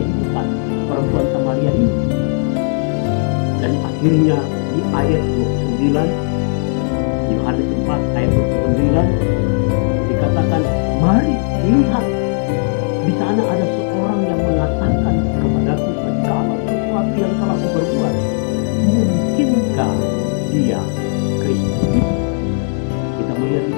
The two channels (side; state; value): right; silent; digital silence